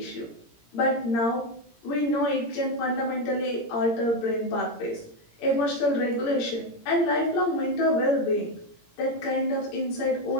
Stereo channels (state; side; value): late; right; 17 ms